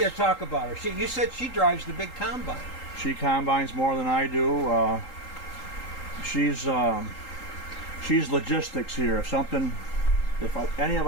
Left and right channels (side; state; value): right; late; 3.8 ms